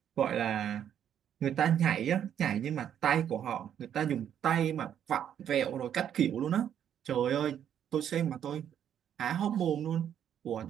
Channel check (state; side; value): quieter; left; 9.5 dB